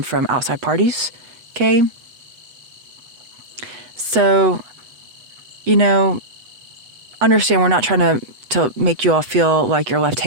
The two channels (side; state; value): left; late; 8.1 ms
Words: from outside parties, okay? So, you know, understand we're not trying to make you all feel like you're left